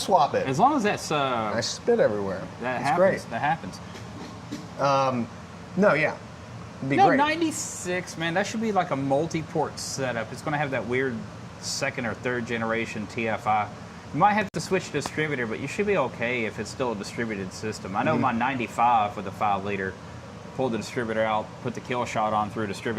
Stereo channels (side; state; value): both; identical; correlation 1.00